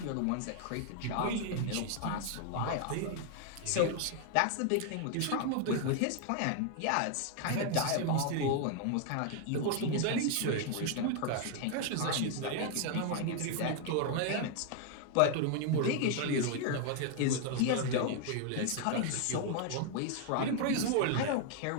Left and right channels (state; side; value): different; both; correlation 0.00